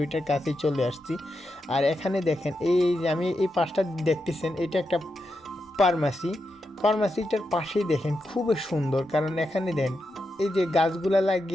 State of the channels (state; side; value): normal; both; correlation 0.86